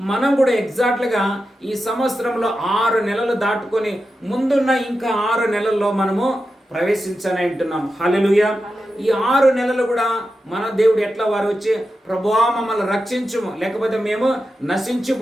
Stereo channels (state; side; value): normal; both; correlation 0.90